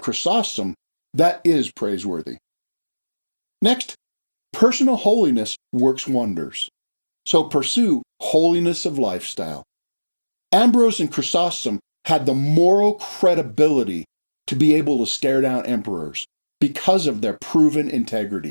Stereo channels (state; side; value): inverted; both; correlation -1.00